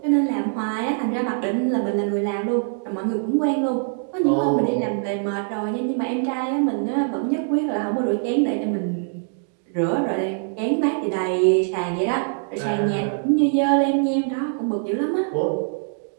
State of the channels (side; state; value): left; silent; digital silence